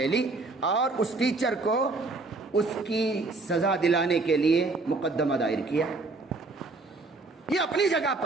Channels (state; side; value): quieter; left; 3.5 dB